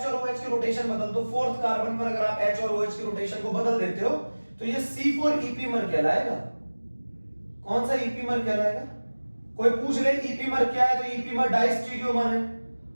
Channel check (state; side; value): inverted; both; correlation -1.00